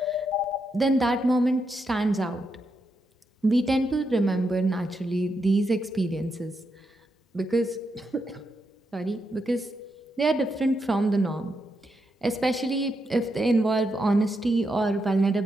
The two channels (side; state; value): both; normal; correlation 0.83